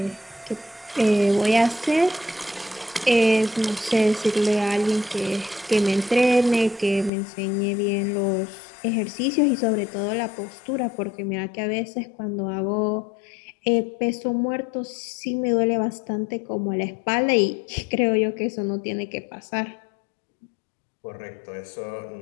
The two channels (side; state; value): right; drops out; at 7.1 s